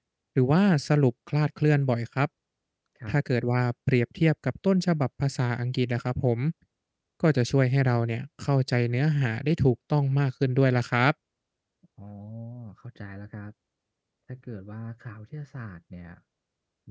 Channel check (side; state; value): both; identical; correlation 1.00